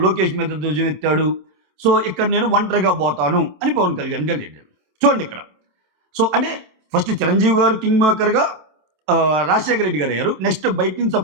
లోకేష్ మీద ధ్వజమెత్తాడు. సో ఇక్కడ నేను ఒంటరిగా పోతాను అని పవన్ కళ్యాణ్ గారు వెళ్ళాడు. చూడండి ఇక్కడ. సో అంటే ఫస్ట్ చిరంజీవి గారు కింగ్ మేకర్గా రాజశేఖర రెడ్డి గారు అయ్యారు. నెక్స్ట్ బయట నుంచి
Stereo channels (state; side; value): late; left; 27 ms